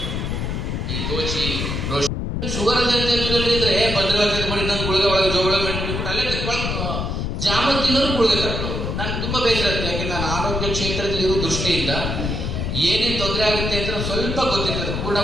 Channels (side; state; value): left; noise; rumble, 2 dB below the sound